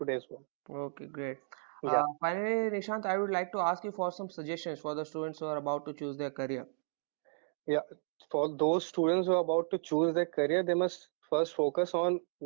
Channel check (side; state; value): left; silent; digital silence